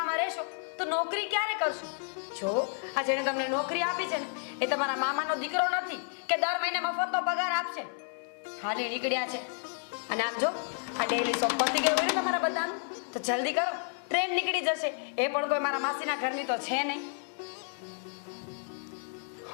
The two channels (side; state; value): right; silent; 57 dB below the other